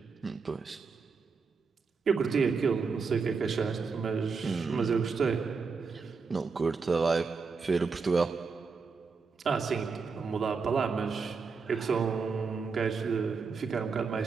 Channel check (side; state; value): left; quieter; 4.9 dB